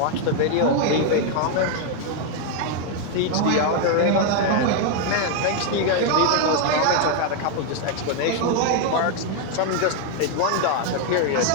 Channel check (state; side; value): different; both; correlation 0.01